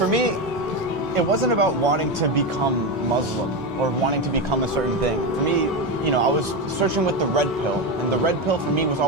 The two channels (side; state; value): both; normal; correlation 0.14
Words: me, it wasn't about wanting to become Muslim or wanting to become a certain thing. For me, I was searching with the red pill, and the red pill for me was